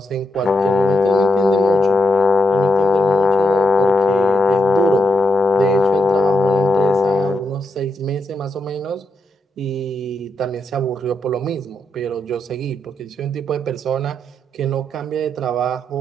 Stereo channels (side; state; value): both; normal; correlation 0.82